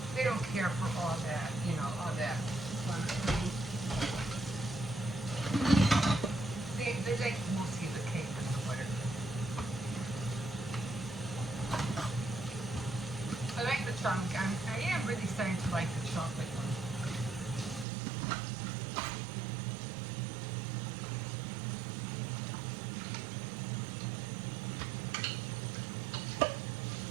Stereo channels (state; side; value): drops out; left; at 17.9 s